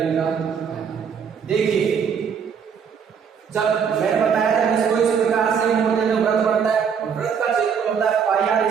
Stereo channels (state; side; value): quieter; left; 7.0 dB